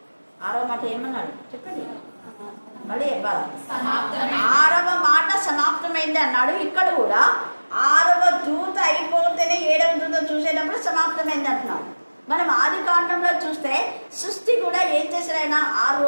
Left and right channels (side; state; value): both; inverted; correlation -1.00